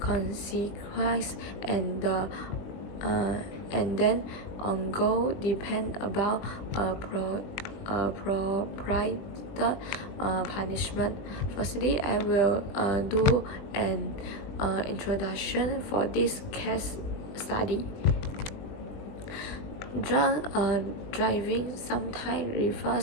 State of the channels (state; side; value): late; right; 20 ms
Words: and then on goal depend about appropriate punishment. Firstly, I will do an introduction for this case study. Drunk driving sometimes